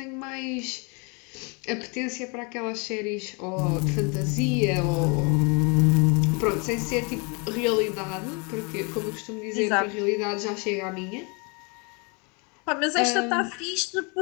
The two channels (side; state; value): right; quieter; 32.6 dB